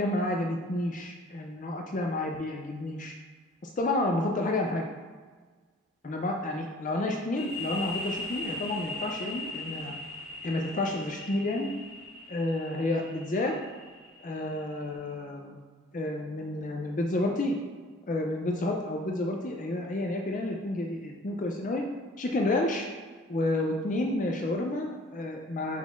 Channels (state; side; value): normal; both; correlation 0.51